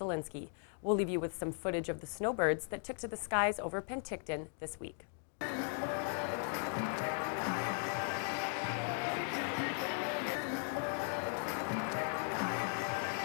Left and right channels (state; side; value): silent; right; 52 dB below the other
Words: We'll leave you with some footage of the snowbirds that took to the skies over Penticton this week.